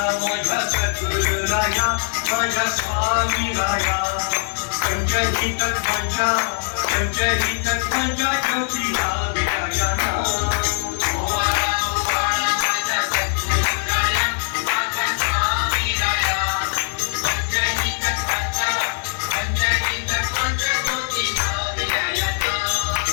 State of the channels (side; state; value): right; silent; 65 dB below the other